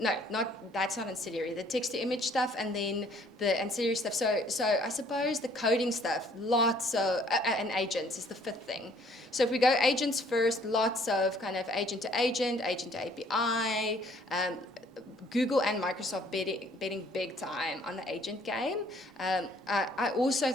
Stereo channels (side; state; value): both; normal; correlation 0.60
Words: that's not ancillary, the text-to-image stuff, and then the ancillary stuff. So I suppose the coding stuff, lots of, and agents is the fifth thing. So if we go agents first, lots of kind of agent-to-agent, agent-to-API, Google and Microsoft betting big time on the agent game. I also